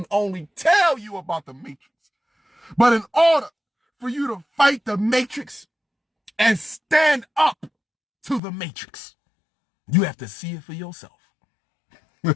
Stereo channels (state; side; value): drops out; right; at 8.4 s